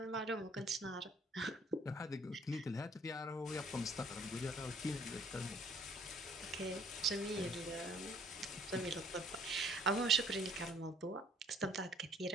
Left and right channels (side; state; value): both; normal; correlation 0.59